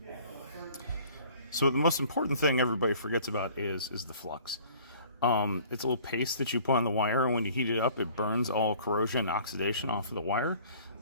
So the most important thing everybody forgets about is the flux. It's a little paste that you put on the wire, and when you heat it up, it burns all corrosion and oxidation off of the wire.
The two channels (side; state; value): both; inverted; correlation -0.52